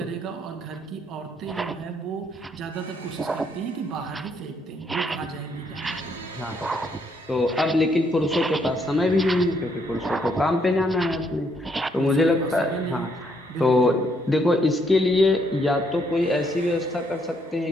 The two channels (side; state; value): both; normal; correlation 0.72